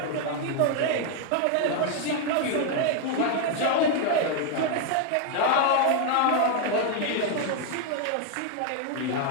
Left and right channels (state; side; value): different; both; correlation 0.01